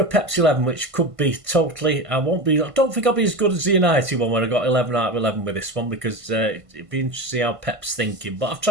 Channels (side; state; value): left; late; 1.5 ms